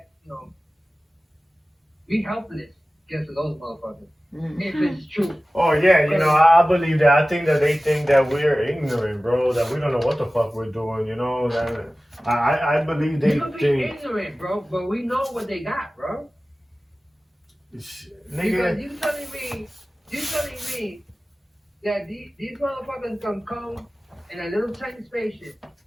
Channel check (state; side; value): normal; both; correlation 0.96